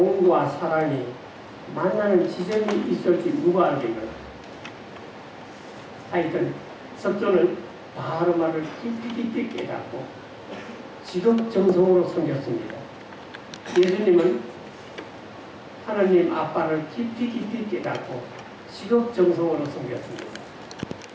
사랑이 만나는 지점이 있을지 누가 알겠나. 하여튼 석조는 다르마를 깊이 깨닫고 지극정성으로 섬겼습니다. 예수님은 하나님 아빠를 깊이 깨닫고 지극정성으로 섬겼습니다.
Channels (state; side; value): identical; both; correlation 1.00